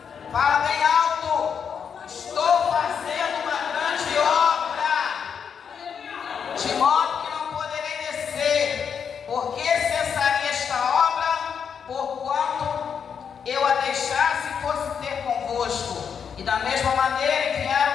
Fala bem alto: estou fazendo uma grande obra, de modo que não poderei descer, porque cessaria esta obra, porquanto eu a deixasse e fosse ter convosco. E da mesma maneira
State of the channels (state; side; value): quieter; right; 7.1 dB